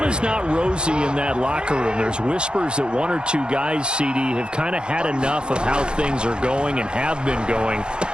is not rosy in that locker room. There's whispers that 1 or 2 guys, CD, have kind of had enough of how things are going and have been going.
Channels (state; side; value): late; left; 0.049 ms